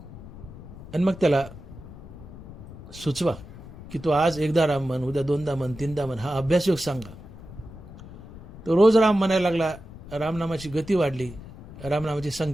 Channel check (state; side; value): noise; left; rumble, 16 dB below the sound